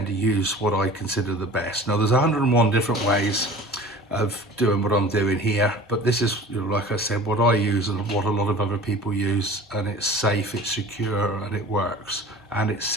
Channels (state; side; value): normal; both; correlation 0.42